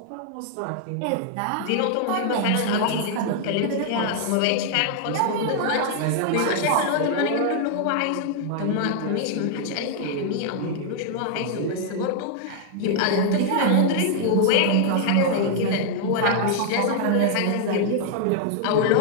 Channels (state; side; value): different; both; correlation 0.00